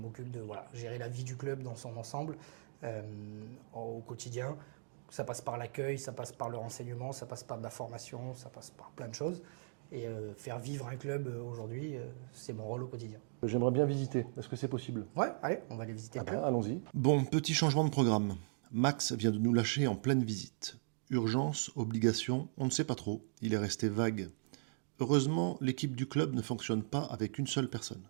de gérer la vie du club dans son ensemble au quotidien. Ça passe par l'accueil, ça passe par le renseignement, ça passe par de la formation, ça passe par plein de choses. Et faire vivre un club aujourd'hui, c'est mon rôle au quotidien. J'aimerais bien visiter. Est-ce que c'est possible? Ouais, allez, on va aller visiter le club. Allons-y. Bon, petit changement de programme. Max vient de nous lâcher en pleine visite. Urgence, obligation, on ne sait pas trop. Il est resté vague. Heureusement, l'équipe du club ne fonctionne pas avec une seule personne.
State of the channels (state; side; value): silent; left; digital silence